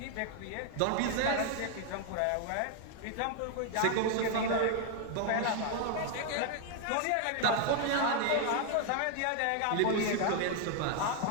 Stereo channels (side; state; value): both; different; correlation 0.00